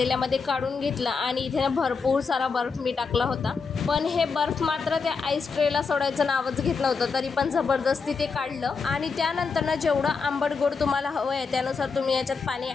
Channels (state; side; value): quieter; right; 5.1 dB